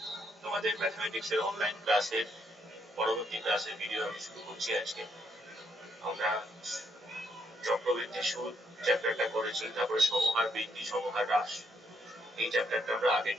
তোমাদের ম্যাথমেটিক্স এর অনলাইন ক্লাসের পরবর্তী ক্লাসের ভিডিও আমি শুরু করছি। আজকে আমরা চক্রবৃদ্ধি সুদ চ্যাপ্টারটা করেছি, তারপরে সমহার বৃদ্ধি, সমহার হ্রাস, এই চ্যাপ্টারটা আমরা আগে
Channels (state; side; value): normal; both; correlation 0.74